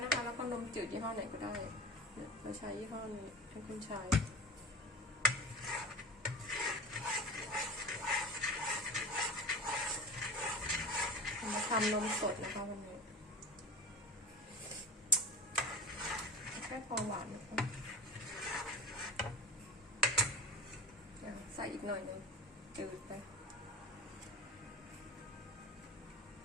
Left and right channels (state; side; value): normal; both; correlation 0.31